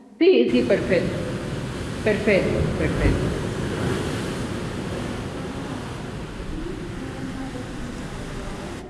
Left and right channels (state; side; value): identical; both; correlation 1.00